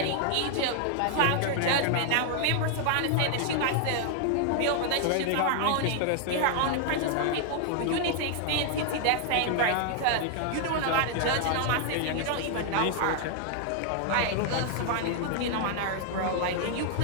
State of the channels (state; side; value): different; both; correlation 0.00